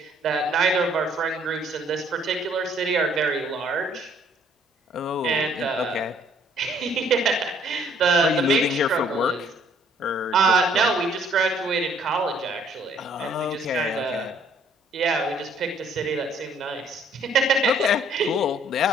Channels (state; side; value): normal; both; correlation 0.62